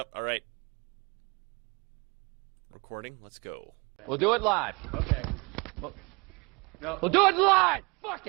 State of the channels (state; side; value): quieter; left; 28.1 dB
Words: All right. Recording. Let's go. We'll do it live. Okay. No. We'll do it live. Fuck